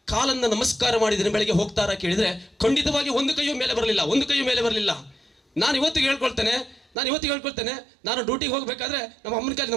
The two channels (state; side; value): drops out; left; at 6.9 s